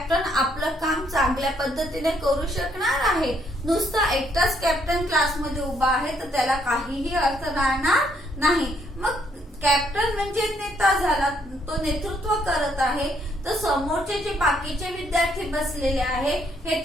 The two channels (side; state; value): both; normal; correlation 0.70